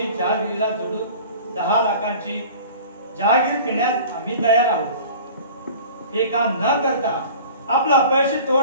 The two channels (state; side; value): inverted; both; correlation -0.42